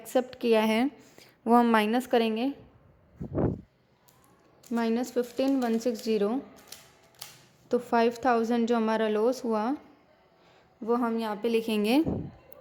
किया है वो हम माइनस करेंगे, -15,160, तो 5,000 जो हमारा लॉस हुआ वो हम यहाँ पे लिखेंगे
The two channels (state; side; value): identical; both; correlation 1.00